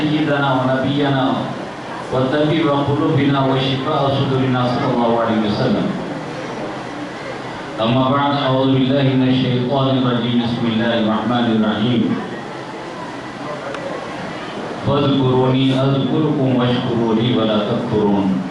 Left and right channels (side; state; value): both; identical; correlation 1.00